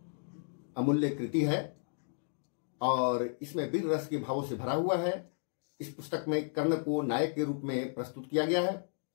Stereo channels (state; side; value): silent; right; digital silence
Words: अमूल्य कृति है और इसमें वीर रस के भावों से भरा हुआ है। इस पुस्तक में कर्ण को नायक के रूप में प्रस्तुत किया गया है।